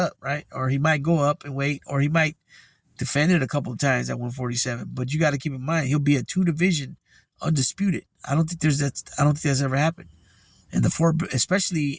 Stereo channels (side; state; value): both; identical; correlation 1.00